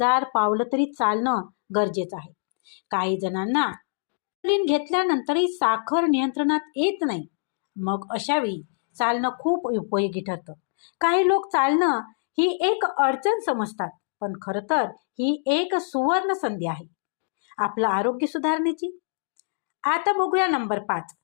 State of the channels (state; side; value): silent; right; digital silence